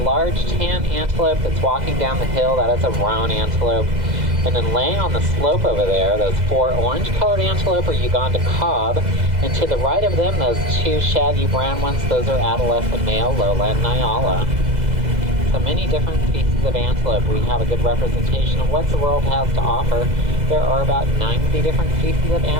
tan antelope that's walking down the hill, that is a roan antelope. And then laying on the slope over there, those 4 orange-colored antelope are Uganda cob. And to the right of them, those 2 shaggy brown ones, those are adolescent male lowland Nyala. So many different species of antelope. We have a good representation of what the world has to offer. There are about 90 different species of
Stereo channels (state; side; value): late; left; 2.0 ms